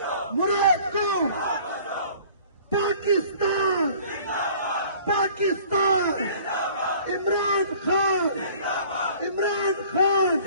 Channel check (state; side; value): inverted; both; correlation -0.50